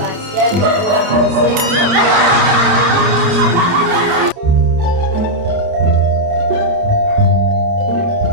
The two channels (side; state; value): left; late; 29 ms